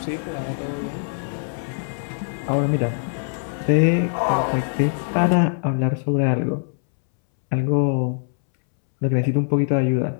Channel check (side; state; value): right; silent; 64 dB below the other